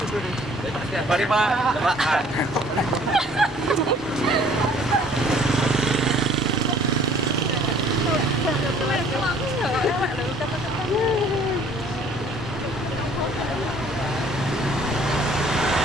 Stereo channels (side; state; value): both; normal; correlation 0.56